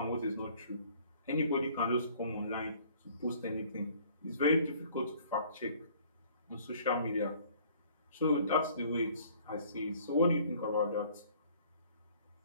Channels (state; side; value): inverted; both; correlation -0.56